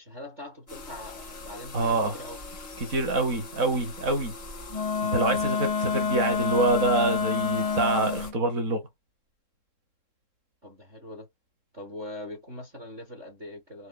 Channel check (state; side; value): late; left; 3.7 ms